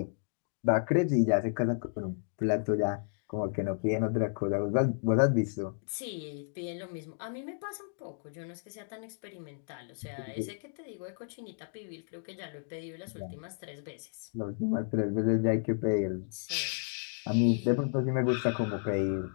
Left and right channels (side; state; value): right; silent; digital silence